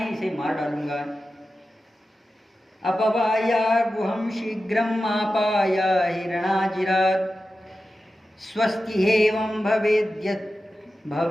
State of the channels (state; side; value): normal; both; correlation 0.93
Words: इसे मार डालूंगा। अपवाया गुहम शीघ्रम आपाया हिरणाजिरात् स्वस्ति हेवं भवेद